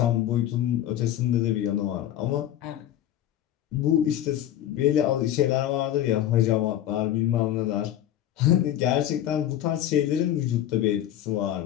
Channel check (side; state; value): right; quieter; 11.8 dB